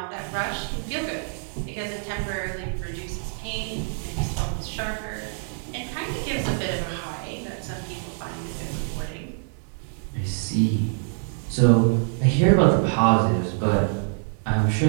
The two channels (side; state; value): left; silent; 61 dB below the other